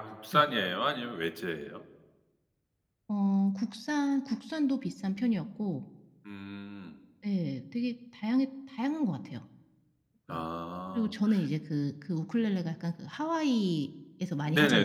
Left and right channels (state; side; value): identical; both; correlation 1.00